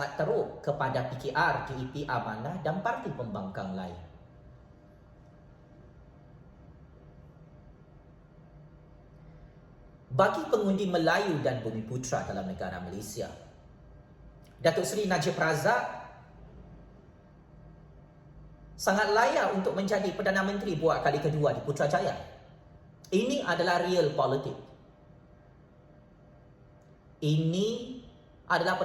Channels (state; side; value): identical; both; correlation 1.00